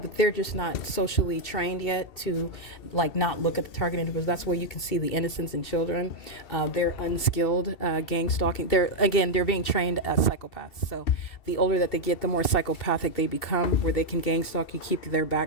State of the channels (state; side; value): late; right; 2.7 ms